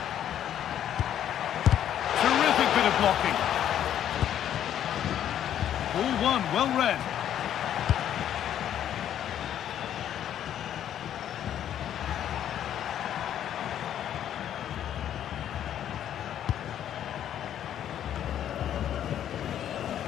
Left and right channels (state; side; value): quieter; right; 10.5 dB